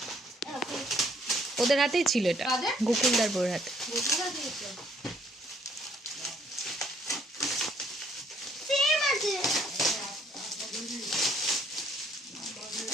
ওদের হাতেই ছিল এটা, কাদের? গোকুলদার বউর হাতে। সেম আছে।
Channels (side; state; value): both; normal; correlation 0.65